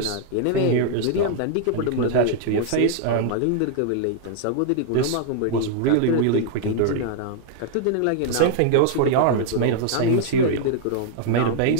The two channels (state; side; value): different; both; correlation -0.01